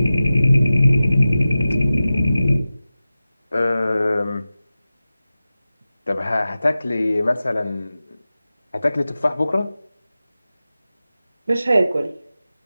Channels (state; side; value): inverted; both; correlation -0.95